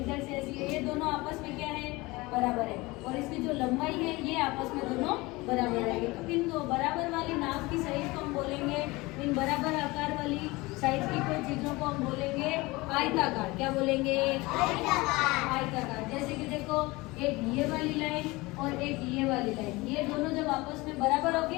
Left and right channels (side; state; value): right; quieter; 22.3 dB